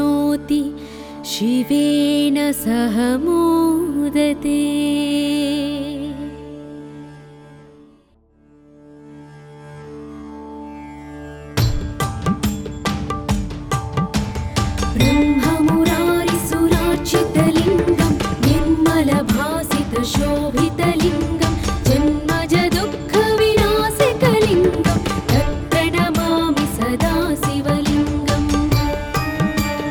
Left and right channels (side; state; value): both; identical; correlation 1.00